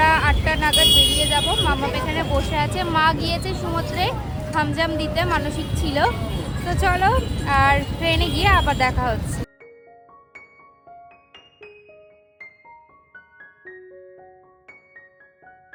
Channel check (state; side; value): identical; both; correlation 1.00